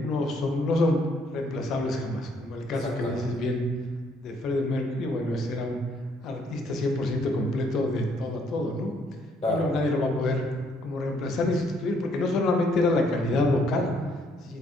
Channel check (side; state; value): both; normal; correlation 0.68